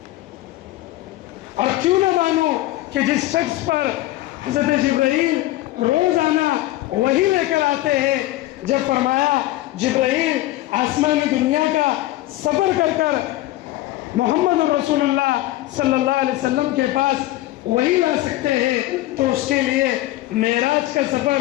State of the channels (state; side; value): quieter; right; 16.5 dB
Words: اور کیوں نہ مانو کہ جس شخص پر حضرت جبرائیل روزانہ وہی لے کر آتے ہیں، جب فرمایا جبرائیل آسمانی دنیا کا سفر کر کر محمد الرسول اللہ صلی اللہ علیہ وسلم کے پاس وہی لا سکتے ہیں، تو اس کے لیے معراج کا